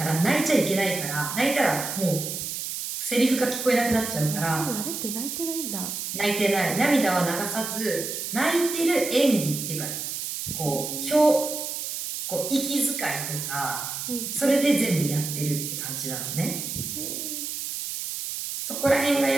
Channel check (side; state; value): right; noise; hiss, 5 dB below the sound